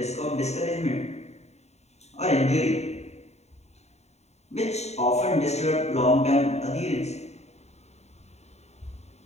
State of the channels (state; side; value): late; right; 0.32 ms